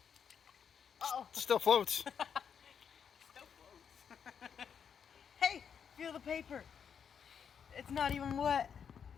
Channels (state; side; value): quieter; right; 7.3 dB